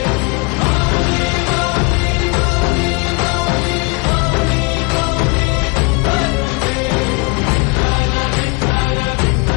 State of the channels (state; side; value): quieter; right; 27.7 dB